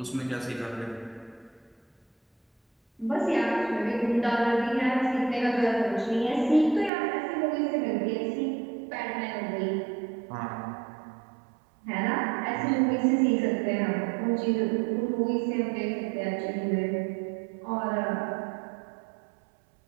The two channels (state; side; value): drops out; left; at 6.9 s